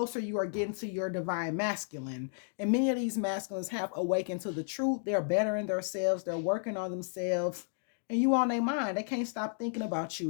you are getting to your divine masculine. And many of these masculines have awakened to the truth. They're bettering themselves, they're working on themselves, and you on their mind. They can't stop thinking about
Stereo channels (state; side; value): silent; right; digital silence